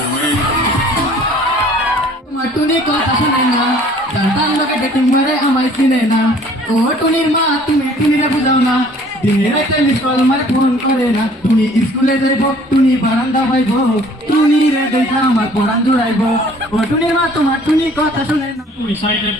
टुनी को पसंद जनता लोग डेटिंग मारे हमारे सीने ना ओ टुनीर माँ तुम्हें टुनीरे बुझाओ ना दिने राते मिसकॉल मारे फोन करे ना टुनी स्कूले जाइबो टुनी बारांदा पाइबो टुनी रे देखा हमार पढ़ान जुड़ाइबो ओ टुनीर माँ तुम्हार टुनी কথা শুনে না। To recite a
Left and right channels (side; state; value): both; normal; correlation 0.54